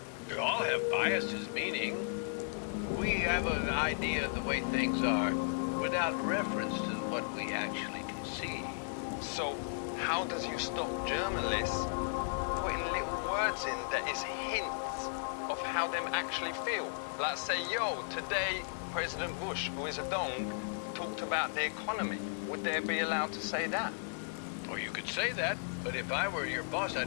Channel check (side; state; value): right; silent; digital silence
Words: We all have biases, meaning we have an idea of the way things are without reference to what we actually can see. So, how does you stop journalists putting little words in that is hints of how them actually feel? Like say, yo, today President Bush, who is a dong, talked about the economy. Would they be allowed to say that? Or you could say that, but if I were your boss,